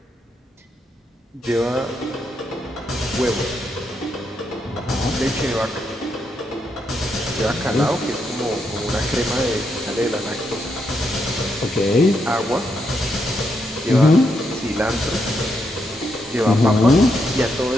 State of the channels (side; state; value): both; normal; correlation 0.80